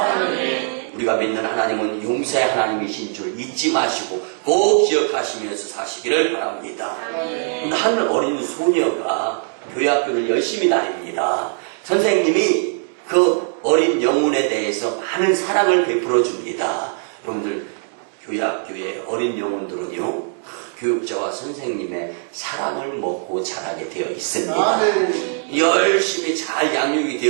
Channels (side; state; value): left; silent; digital silence